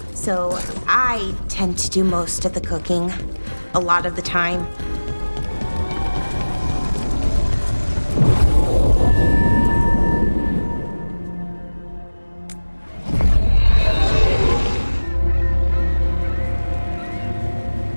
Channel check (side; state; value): both; inverted; correlation -1.00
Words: So I tend to do most of the cooking, a lot of the time.